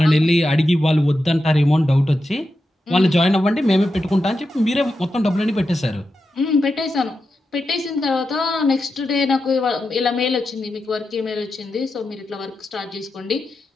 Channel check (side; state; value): both; normal; correlation 0.89